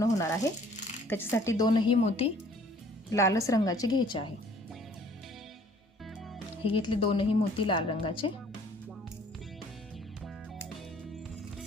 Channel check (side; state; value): both; normal; correlation 0.56